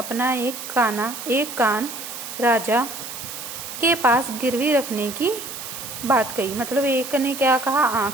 एक कान राजा के पास गिरवी रखने की बात कही। मतलब एक ने क्या कहा,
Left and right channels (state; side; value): noise; right; hiss, 9 dB below the sound